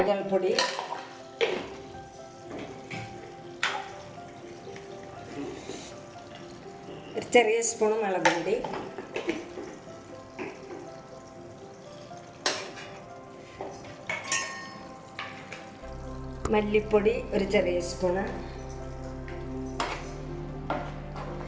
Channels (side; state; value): both; identical; correlation 1.00